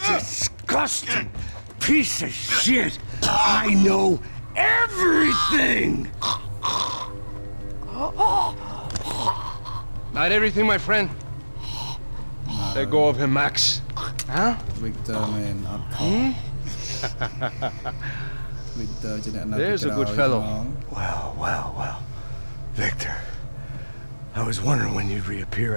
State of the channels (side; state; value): both; inverted; correlation -1.00